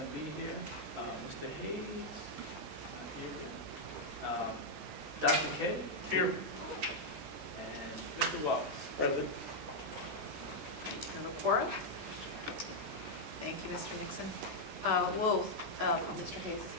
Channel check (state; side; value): late; left; 14 ms